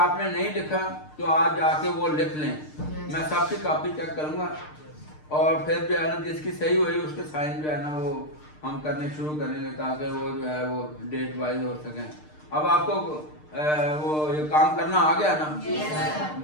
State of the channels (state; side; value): late; right; 6.6 ms